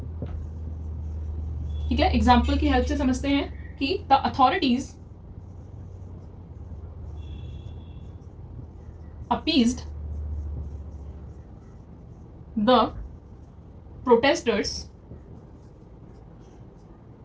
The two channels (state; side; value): identical; both; correlation 1.00